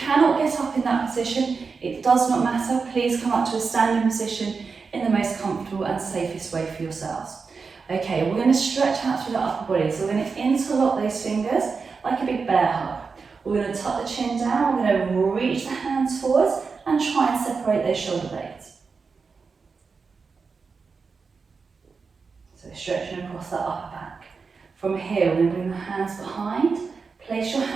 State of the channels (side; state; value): left; quieter; 4.9 dB